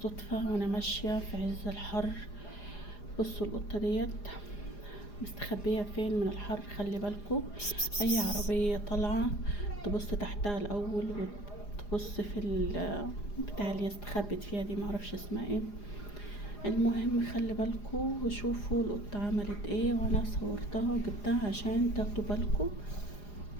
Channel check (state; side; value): late; right; 4.9 ms